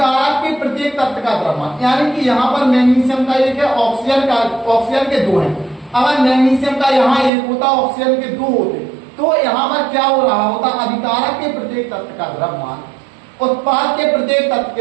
के प्रत्येक तत्व का द्रव्यमान, यानी कि यहाँ पर मैग्नीशियम का 1 है, ऑक्सीजन के 2 हैं। अगर मैग्नीशियम का यहाँ 1 होता, ऑक्सीजन के 2 होते, तो यहाँ पर क्या हो रहा होता, अभिकारक के प्रत्येक तत्व का द्रव्यमान उत्पाद के प्रत्येक तत्व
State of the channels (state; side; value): drops out; left; at 7.3 s